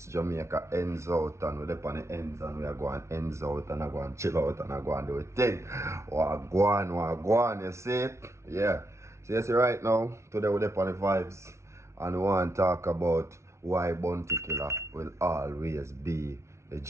Jamaica ends out and we're up on the ends and we are going ends out and I go and chill out and I go and do a thing. Wagwan, you see it? Yeah. So you see right now, today we're up on the vibes and we want to talk about why Bounty Killer will always be the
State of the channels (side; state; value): left; late; 0.13 ms